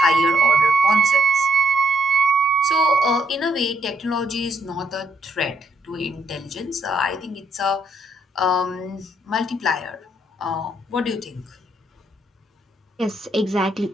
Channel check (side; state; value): both; normal; correlation 0.73